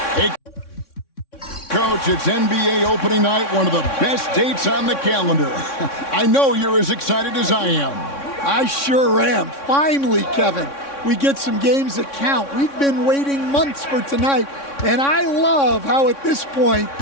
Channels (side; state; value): right; late; 3.6 ms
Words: Hey, Coach, it's NBA opening night, one of the best dates on the calendar. I know you're as excited as I am. I sure am. Finally, Kevin, we get some games that count. We've been waiting months for tonight, and I love how at this point,